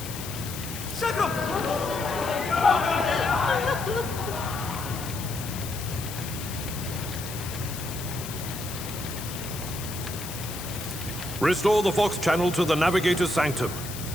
Restore the Vox channel to the Navigator's Sanctum.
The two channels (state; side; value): noise; left; hiss, 10 dB below the sound